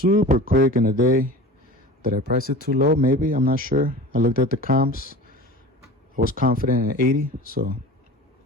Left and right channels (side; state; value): both; normal; correlation 0.36